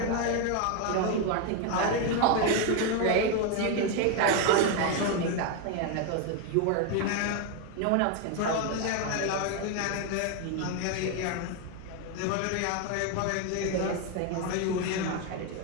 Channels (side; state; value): both; different; correlation 0.01